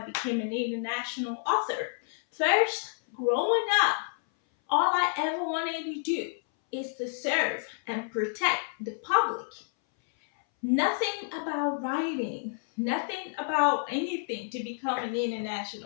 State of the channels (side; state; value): right; silent; 58 dB below the other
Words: became an international author. First, growing up, all I ever wanted to do is to serve and protect the public. Nothing about writing, nothing about anything to become an